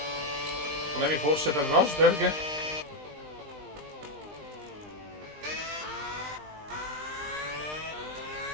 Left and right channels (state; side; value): late; left; 20 ms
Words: Problemi forse per Rosberg?